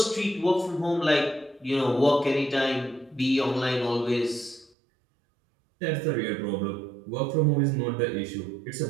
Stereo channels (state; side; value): drops out; left; at 4.7 s